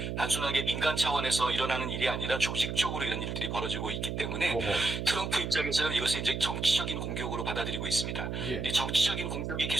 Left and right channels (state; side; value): noise; right; hum, 3 dB below the sound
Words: 단순하게 민간 차원에서 일어나는 일이 아니라 조직적으로 이런 일들이 벌어지고 있기 때문에 어허. 트럼프 입장에서는 이것을 이제 정치적인 공격으로 받아들이고 있습니다. 예. 이 정치적인 공격이